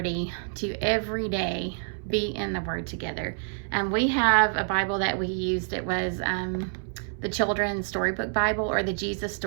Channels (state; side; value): silent; left; 60 dB below the other